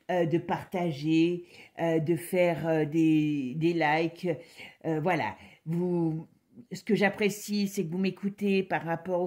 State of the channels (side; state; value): both; identical; correlation 1.00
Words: de partager, de faire des likes. Voilà. Ce que j'apprécie, c'est que vous m'écoutez par rapport